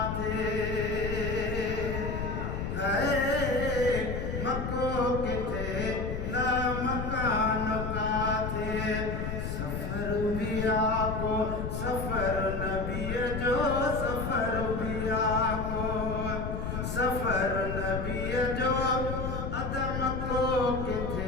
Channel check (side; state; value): left; noise; rumble, 3 dB below the sound